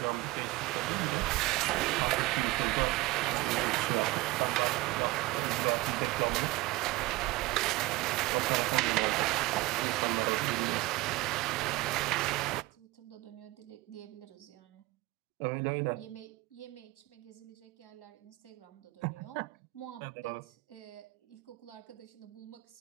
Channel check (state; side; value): quieter; left; 20.1 dB